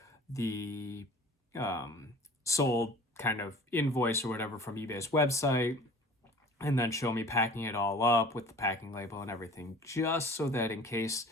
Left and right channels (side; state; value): both; normal; correlation 0.45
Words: the sold kind of invoice or whatever from eBay's website, and then show me packing it all up with the packing label and everything, just so that in case